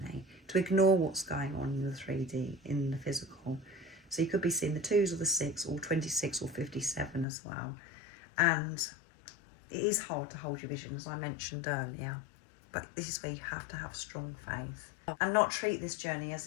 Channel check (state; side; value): drops out; right; at 7.2 s